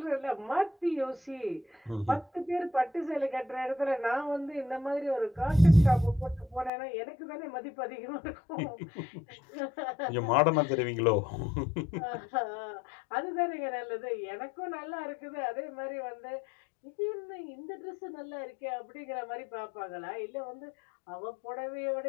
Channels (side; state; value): right; drops out; at 6.7 s